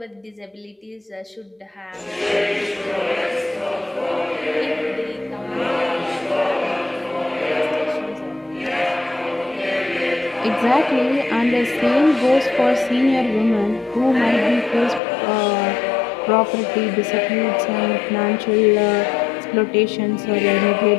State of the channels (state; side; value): drops out; right; at 15.0 s